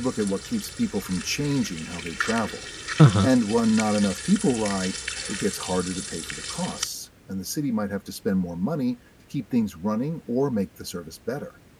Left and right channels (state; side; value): identical; both; correlation 1.00